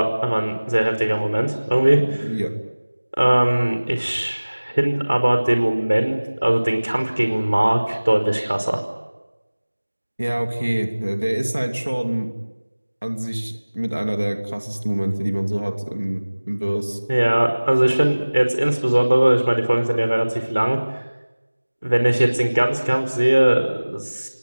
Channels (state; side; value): inverted; both; correlation -1.00